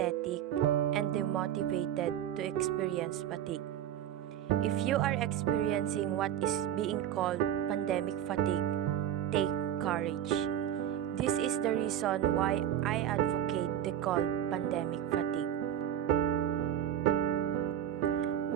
and demotivated to experience fatigue. If you are experiencing what is being called pandemic fatigue, take courage. This is the reason why I advocate the called pandemic fatigue.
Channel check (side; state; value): left; quieter; 10.6 dB